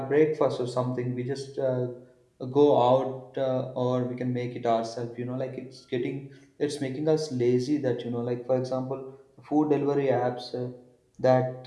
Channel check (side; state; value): both; identical; correlation 1.00